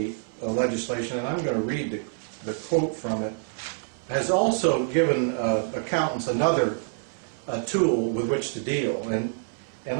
legislation, and I'm going to read the quote from it, has also given accountants another tool with which to deal. And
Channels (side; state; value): left; silent; 60 dB below the other